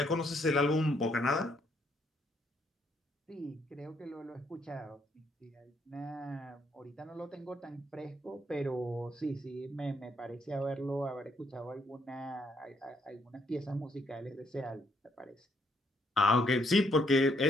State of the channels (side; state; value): both; normal; correlation 0.72